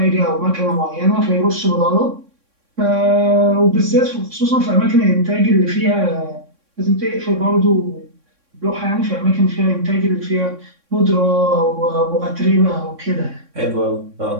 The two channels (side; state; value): left; late; 3.6 ms